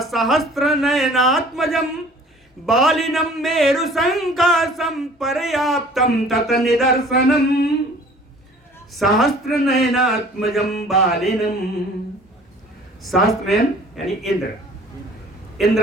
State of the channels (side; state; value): both; normal; correlation 0.50